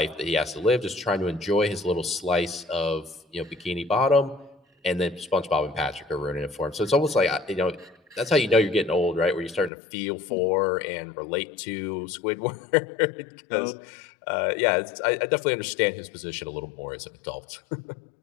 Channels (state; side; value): drops out; right; at 9.7 s